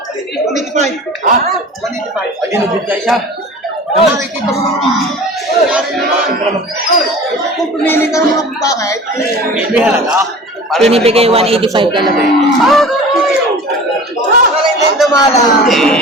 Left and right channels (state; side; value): normal; both; correlation 0.39